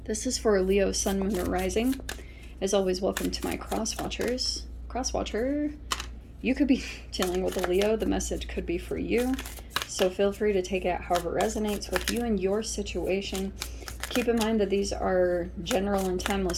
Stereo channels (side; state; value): both; identical; correlation 1.00